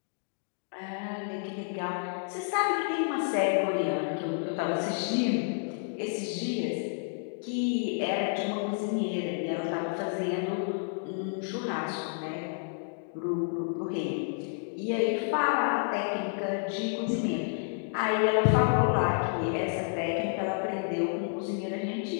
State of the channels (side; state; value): right; silent; digital silence